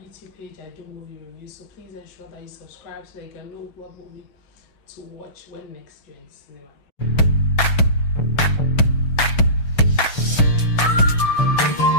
YouTube page. I do movie reviews, so please ensure that you subscribe so that you can know what movie to watch when next you're in the cinema.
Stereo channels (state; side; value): late; right; 6.8 ms